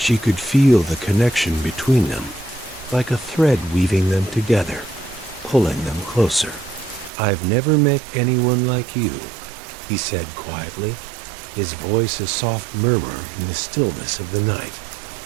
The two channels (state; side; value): drops out; left; at 7.1 s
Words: could feel the connection between them, like a thread weaving them together, pulling them closer. "I've never met anyone like you," he said quietly, his voice a soft murmur in the stillness of the night.